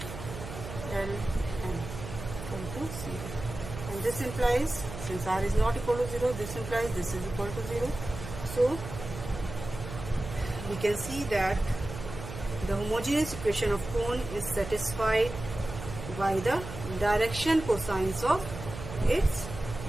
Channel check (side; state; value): right; noise; hum, 10 dB below the sound